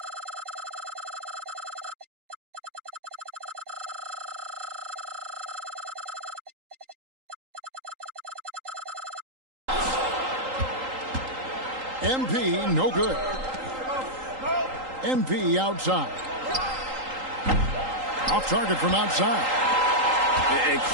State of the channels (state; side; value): late; left; 3.8 ms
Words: MP, no good. MP outside. Off target from outside. And